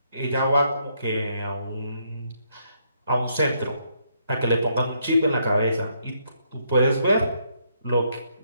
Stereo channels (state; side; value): inverted; both; correlation -0.74